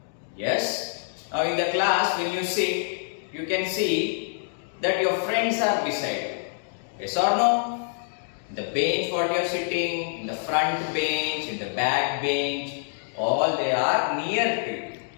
Yes, now in the class when you sit, you can see that your friends are beside you. Yes or no? In the bench what you are sitting, in the front bench, in the back bench, all they are near to you.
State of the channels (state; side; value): silent; right; digital silence